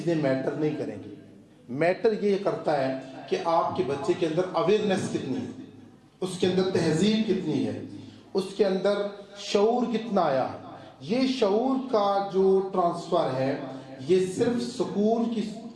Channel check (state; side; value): identical; both; correlation 1.00